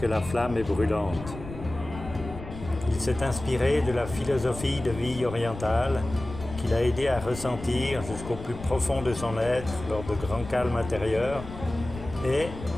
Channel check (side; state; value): left; noise; rumble, 12 dB below the sound